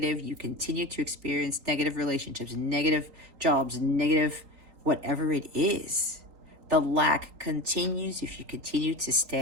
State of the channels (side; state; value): left; late; 3.8 ms